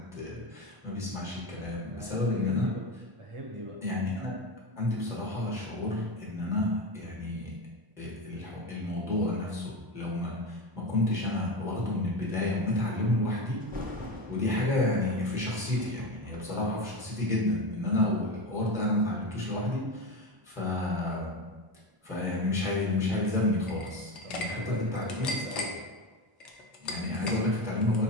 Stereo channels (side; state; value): left; late; 1.0 ms